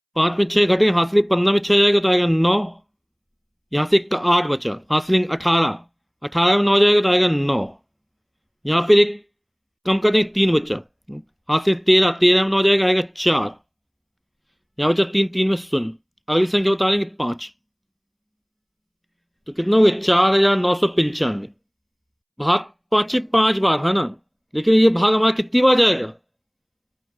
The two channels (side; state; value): both; identical; correlation 1.00